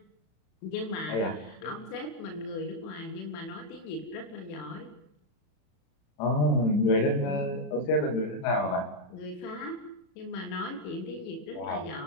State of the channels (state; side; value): late; right; 34 ms